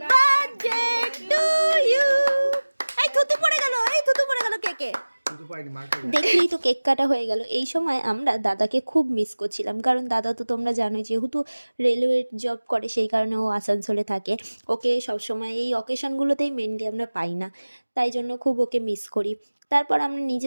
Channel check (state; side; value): inverted; both; correlation -1.00